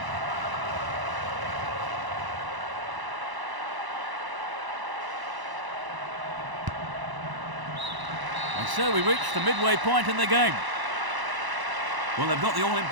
And so we reach the midway point in the game. Well, they've got the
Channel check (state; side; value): late; left; 1.0 ms